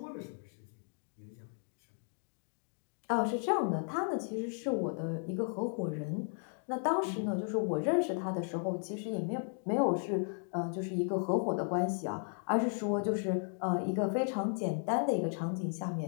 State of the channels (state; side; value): silent; right; 54 dB below the other